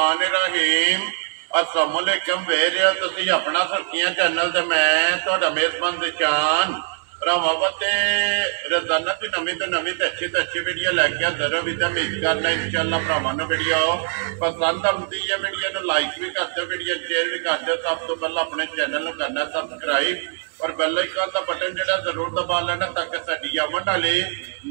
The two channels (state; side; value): silent; left; 61 dB below the other